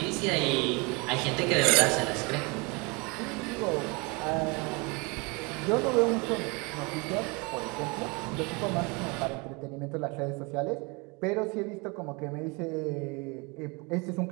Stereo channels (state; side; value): quieter; left; 28.8 dB